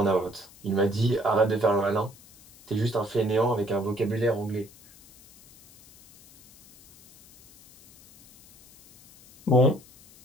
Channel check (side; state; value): left; noise; hiss, 25 dB below the sound